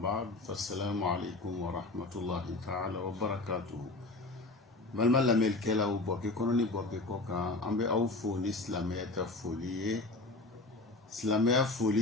بعد، فالسلام عليكم ورحمة الله تعالى وبركاته. Malma la melkela ou boke kononi boke koka ambe au foli islamia ka foli islamia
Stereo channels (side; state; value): right; quieter; 3.1 dB